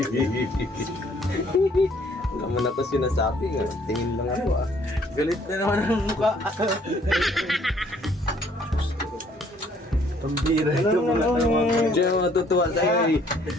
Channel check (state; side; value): normal; both; correlation 0.62